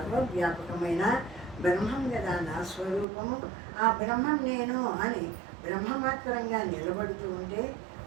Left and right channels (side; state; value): left; drops out; at 3.1 s